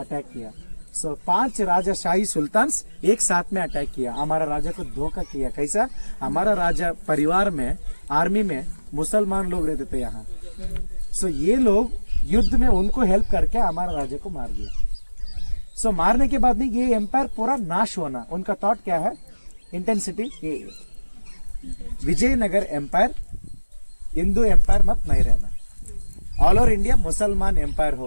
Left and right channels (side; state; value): both; inverted; correlation -1.00